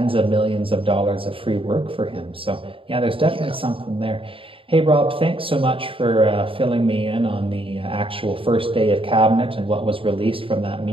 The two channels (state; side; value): late; left; 0.26 ms